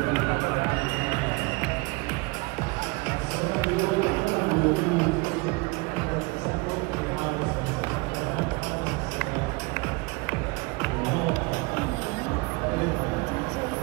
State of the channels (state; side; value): quieter; left; 26.8 dB